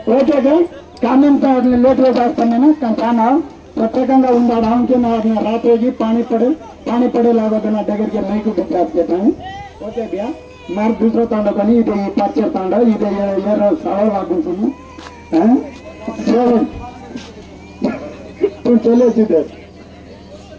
ओके का कामन तो लेट हो जाता ना खाना प्रत्येकंगा उंडाड हमके ना रात होगी पानी पड़े लागो ना डगर के नहीं को बिचार के ताने ओके भैया मार दूसरा तांडा बनी इधर पाचर तांडा इधर ये सावल लागू सुनो हैं चलो तो चले सीधे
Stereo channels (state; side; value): identical; both; correlation 1.00